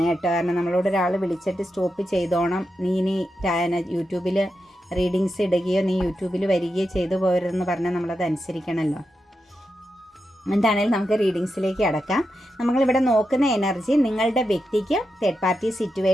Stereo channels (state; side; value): normal; both; correlation 0.88